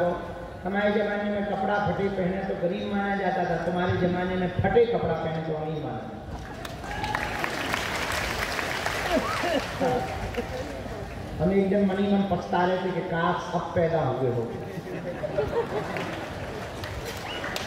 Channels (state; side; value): identical; both; correlation 1.00